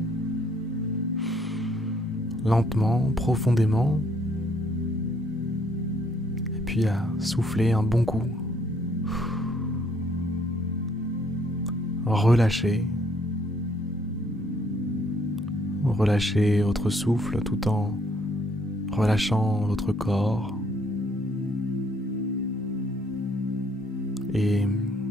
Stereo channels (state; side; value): normal; both; correlation 0.67